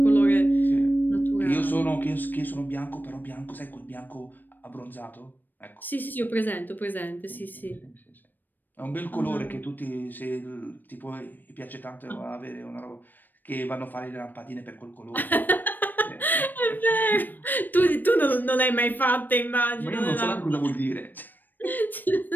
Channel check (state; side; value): late; right; 0.090 ms